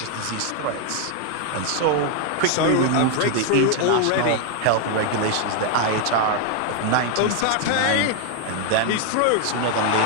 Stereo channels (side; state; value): both; different; correlation 0.00